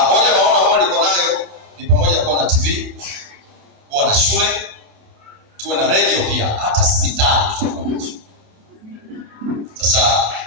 moja maono ambayo niko nayo ni pamoja kuwa na TV, kuwa na shule, tuwe na radio pia, hata hospitali tutakuwa nazo. Sasa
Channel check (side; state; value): left; late; 27 ms